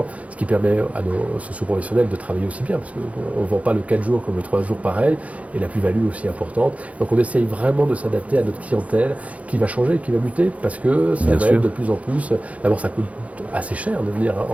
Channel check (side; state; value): left; late; 0.067 ms